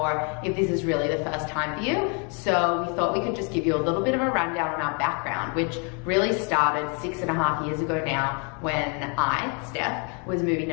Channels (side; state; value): right; quieter; 36.4 dB